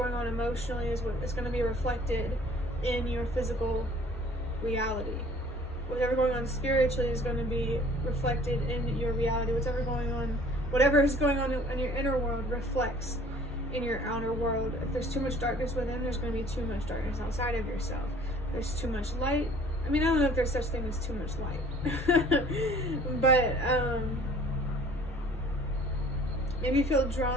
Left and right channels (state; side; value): normal; both; correlation 0.52